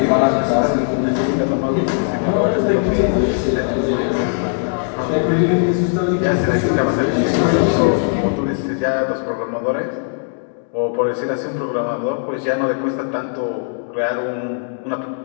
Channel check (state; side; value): silent; right; digital silence